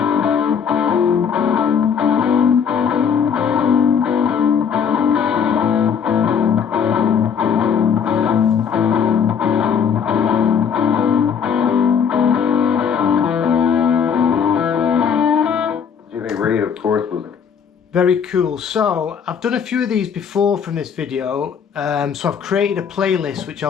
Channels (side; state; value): right; quieter; 7.1 dB